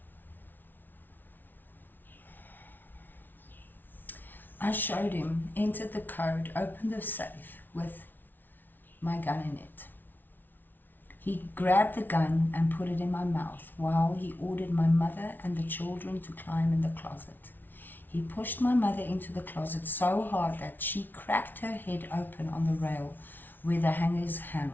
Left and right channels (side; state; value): right; late; 0.090 ms